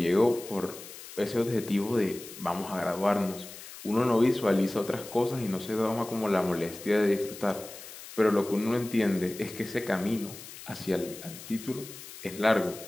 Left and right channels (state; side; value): noise; left; hiss, 14 dB below the sound